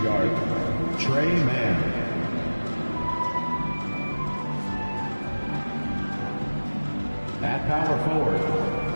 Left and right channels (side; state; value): both; inverted; correlation -1.00